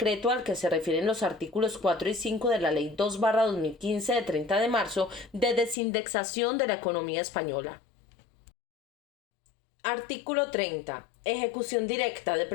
al que se refieren los artículos 4 y 5 de la Ley 2/2015 de 30 de marzo de desindexación de la economía española. Artículo 30. Ejecución directa de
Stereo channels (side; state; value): right; drops out; at 5.8 s